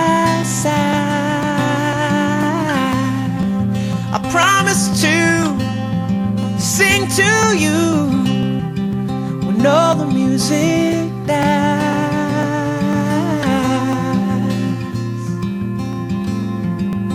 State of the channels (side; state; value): right; noise; hum, 30 dB below the sound